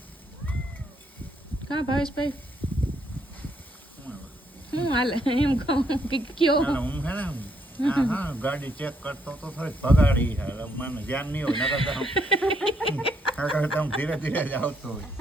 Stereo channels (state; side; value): normal; both; correlation 0.73